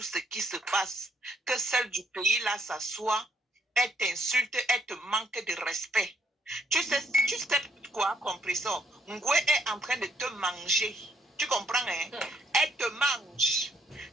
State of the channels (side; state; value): both; normal; correlation 0.71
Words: ce qui se passe. Que celle du pays là s'assoit, elle t'insulte, elle te manque de respect. Tu sais quoi, compressor? Ngwe est en train de te manger. Tu comprends, hein? Elle te mange.